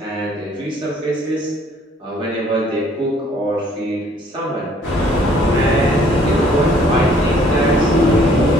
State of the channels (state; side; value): normal; both; correlation 0.60